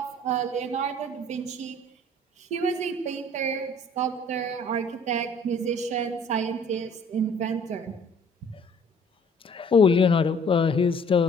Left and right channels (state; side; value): normal; both; correlation 0.55